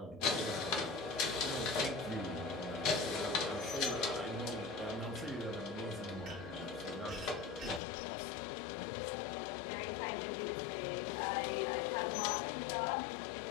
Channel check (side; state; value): right; drops out; at 7.8 s